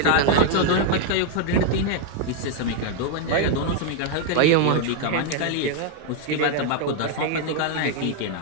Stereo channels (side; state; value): both; different; correlation 0.00